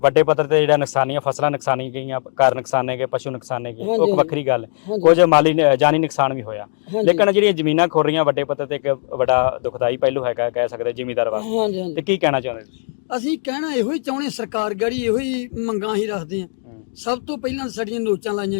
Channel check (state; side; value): silent; right; 66 dB below the other